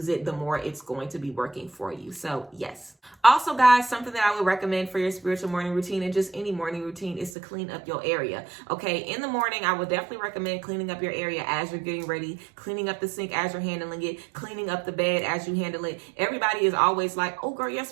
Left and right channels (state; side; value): drops out; left; at 7.3 s